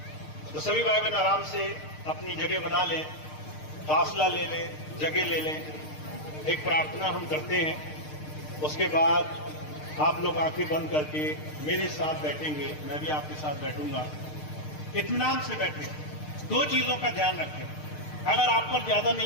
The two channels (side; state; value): right; late; 6.6 ms